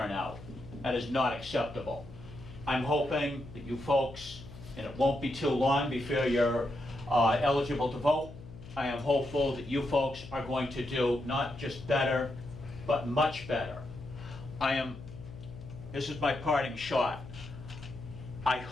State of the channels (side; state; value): left; noise; hum, 15 dB below the sound